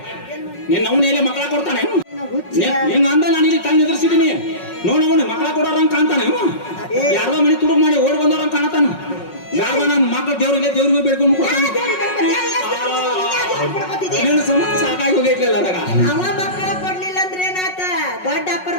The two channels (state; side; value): late; right; 5.4 ms